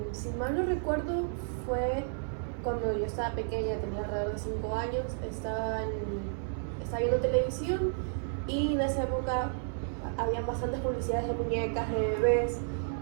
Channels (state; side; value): silent; left; 56 dB below the other